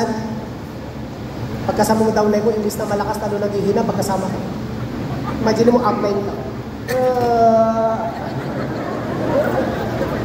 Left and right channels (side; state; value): both; identical; correlation 1.00